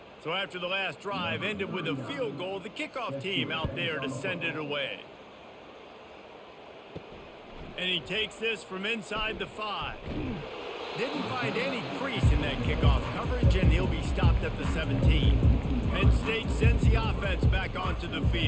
So after the last drive ended with a field goal, the kickoff team out there to send it away. And he takes this from inside the 5. Didn't find any crease in that kickoff coverage, and he'll be stopped at the 17. Penn State sends the offense back onto the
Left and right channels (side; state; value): both; identical; correlation 1.00